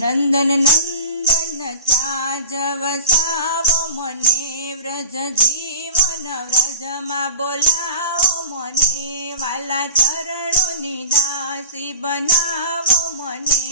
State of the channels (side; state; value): both; inverted; correlation -0.33